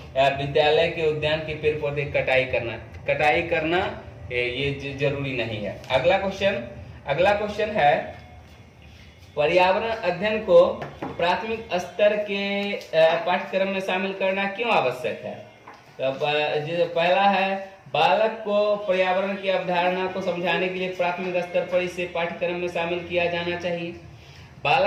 विद्यालय के उद्यान के पेड़ पौधे कटाई करना ये जरूरी नहीं है। अगला क्वेश्चन है, पर्यावरण अध्ययन को प्राथमिक स्तर के पाठ्यक्रम में शामिल करना क्यों आवश्यक है? तो पहला है, बालक को पर्यावरण की अवधारणा को समझाने के लिए प्राथमिक स्तर पर इसे पाठ्यक्रम में शामिल किया जाना चाहिए।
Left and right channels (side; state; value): both; identical; correlation 1.00